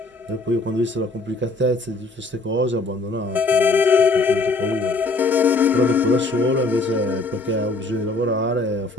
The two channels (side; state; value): right; quieter; 3.3 dB